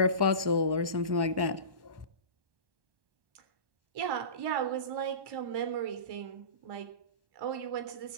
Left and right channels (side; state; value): left; late; 1.1 ms